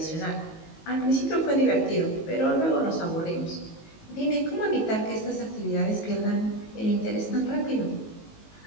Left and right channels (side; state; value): right; late; 19 ms